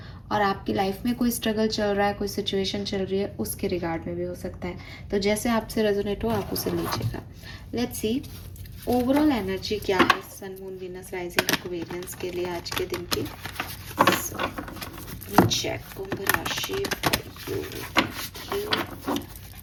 और आपकी लाइफ में कोई स्ट्रगल चल रहा है, कोई सिचुएशन चल रही है, उसके रिगार्ड में भी हो सकता है। तो जैसे आपसे रेजोनेट हो आप उसे लीजिएगा। लेट्स सी ओवरऑल एनर्जी क्या है sun moon Venus rising Aquarians के लिए आज के दिन की। चेक कुंभ राशि for you.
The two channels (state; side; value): identical; both; correlation 1.00